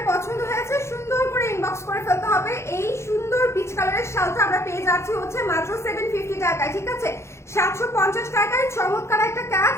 পছন্দ হয়েছে সুন্দর করে ইনবক্স করে ফেলতে হবে। এই সুন্দর পিচ কালারের শালটা আমরা পেয়ে যাচ্ছি হচ্ছে মাত্র 750 টাকায়, ঠিক আছে? 750 টাকায় চমৎকার একটা কাজ।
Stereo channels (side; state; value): right; late; 0.13 ms